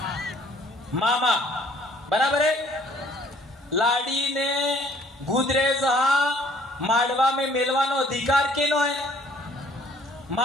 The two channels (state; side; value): normal; both; correlation 0.59